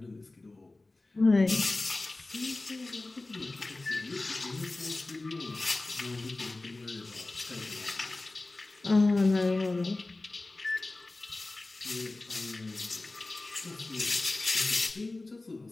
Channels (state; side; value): quieter; right; 3.1 dB